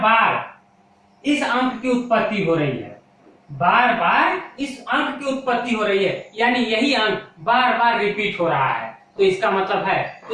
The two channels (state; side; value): identical; both; correlation 1.00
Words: बार इस अंक की उत्पत्ति हो रही है, बार बार इस अंक की उत्पत्ति हो रही है, यानी यही अंक बार बार रिपीट हो रहा है। तो इसका मतलब है,